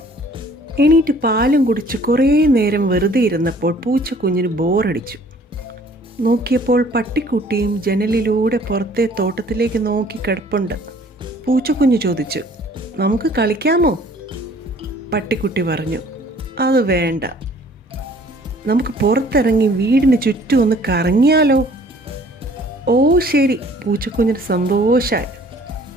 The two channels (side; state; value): both; normal; correlation 0.55